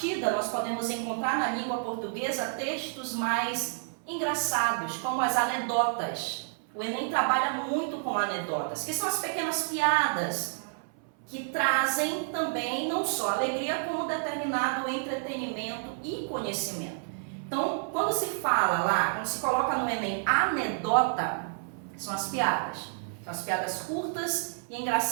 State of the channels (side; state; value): left; silent; 58 dB below the other